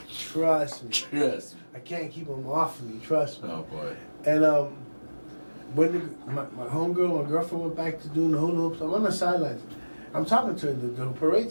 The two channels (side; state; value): both; inverted; correlation -1.00